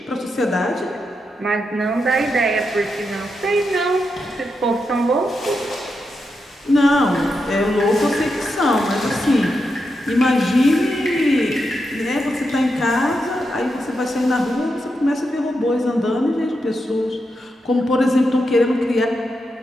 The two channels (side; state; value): both; normal; correlation 0.85